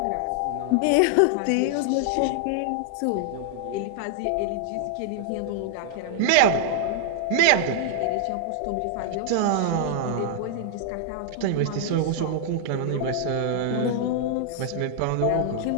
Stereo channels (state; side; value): different; both; correlation -0.01